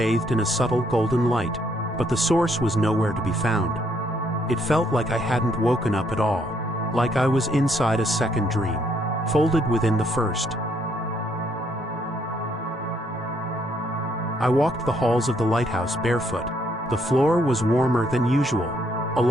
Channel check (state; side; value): normal; both; correlation 0.71